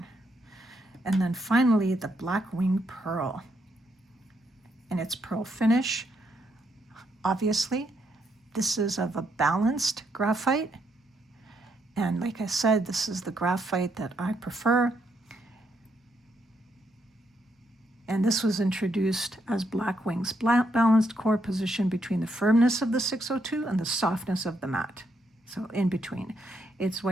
And then finally, the Blackwing Pearl. And its pearl finish, obviously, this is of a balanced graphite. And like I said, this is the graphite that I prefer. And this was introduced as Blackwing's balanced core position between the firmness of the 602 and the softness of the matte. So in between. Its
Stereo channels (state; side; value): normal; both; correlation 0.77